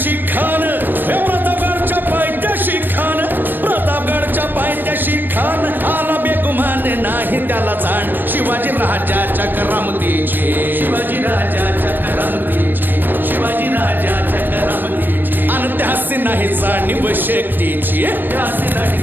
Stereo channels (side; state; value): left; late; 0.092 ms